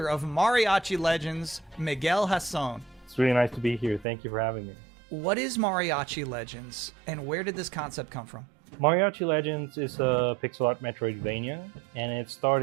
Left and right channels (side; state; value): left; drops out; at 4.0 s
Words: of Mariachi Legends, Miguel Hasson. It's really nice to be here. Thank you for having me. What is Mariachi Legends, and where did this concept come from? Mariachi Legends is a pixel art Metroidvania, and it